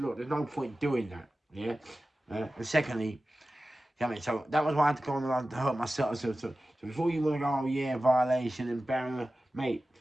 look, there's no point doing that. Yeah. And secondly, you know what I mean? So that was why I had to go on the line to hurt myself. So before you want to go, oh yeah, violation and barrier, mate,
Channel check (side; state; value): both; normal; correlation 0.95